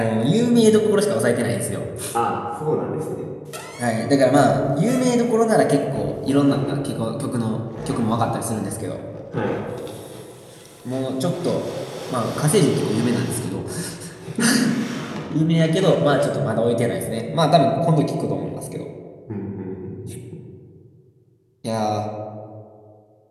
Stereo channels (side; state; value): both; identical; correlation 1.00